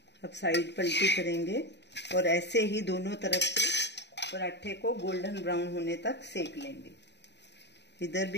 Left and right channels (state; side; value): late; right; 0.50 ms